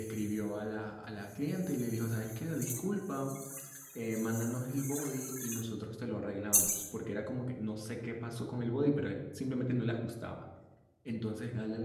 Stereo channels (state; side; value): identical; both; correlation 1.00